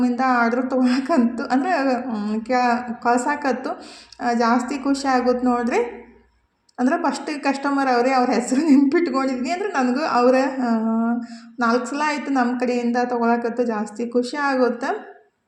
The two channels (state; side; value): identical; both; correlation 1.00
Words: ಆರ್ಡ್ರ್ ತೊಗೊಳಕಂತು, ಅಂದರೆ ಕಳ್ಸಾಕತ್ತು. ಜಾಸ್ತಿ ಖುಷಿ ಆಗುತ್ತೆ ನೋಡಿರಿ. ಅಂದರೆ ಫಸ್ಟ್ ಕಸ್ಟಮರ್ ಅವರೇ, ಅವ್ರ ಹೆಸರು ನೆನ್ಪಿಟ್ಕೊಂಡಿದ್ನಿ. ಅಂದರೆ ನನಗೂ ಅವರ 4 ಸಲ ಆಯಿತು ನಮ್ಮ ಕಡೆಯಿಂದ ತೊಗೊಳಕತ್ತು. ಜಾಸ್ತಿ ಖುಷಿ ಆಗುತ್ತೆ.